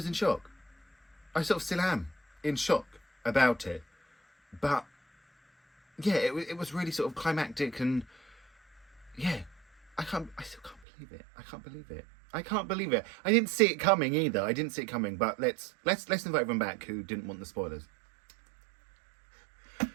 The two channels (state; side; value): drops out; left; at 10.8 s